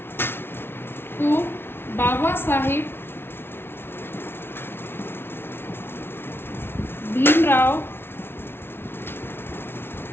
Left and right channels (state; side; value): late; right; 0.11 ms